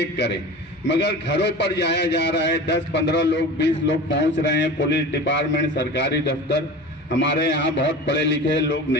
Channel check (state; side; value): normal; both; correlation 0.34